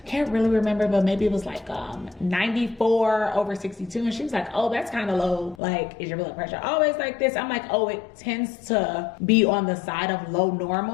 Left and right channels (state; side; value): drops out; right; at 5.6 s